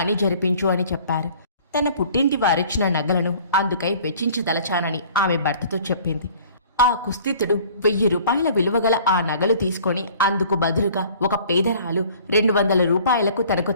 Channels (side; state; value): both; inverted; correlation -0.51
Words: జరిపించు అని చెప్పారు. తన పుట్టింటి వారిచ్చిన నగలను అందుకై వెచ్చించదలచానని ఆమె భర్తతో చెప్పింది. ఆ కుస్థితుడు 1000 రూపాయల విలువగల ఆ నగలు తీసుకొని అందుకు బదులుగా ఒక పేదరాలు 200 రూపాయలకు తనకు